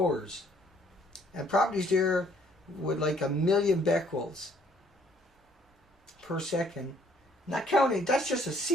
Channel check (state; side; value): normal; both; correlation 0.63